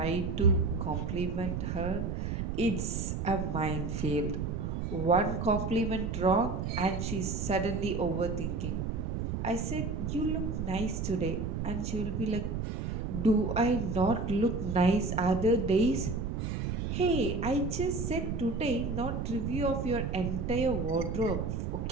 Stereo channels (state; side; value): noise; right; rumble, 2 dB below the sound